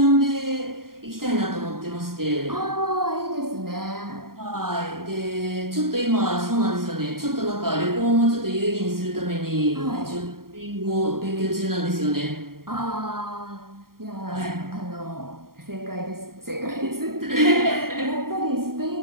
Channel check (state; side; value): late; left; 0.93 ms